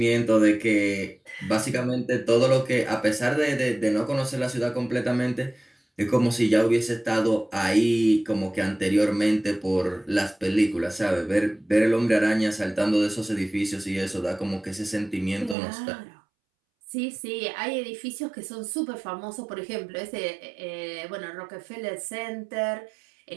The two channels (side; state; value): left; drops out; at 15.6 s